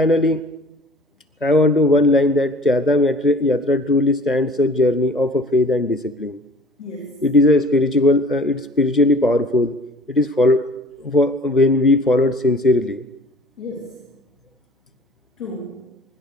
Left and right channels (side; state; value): both; normal; correlation 0.49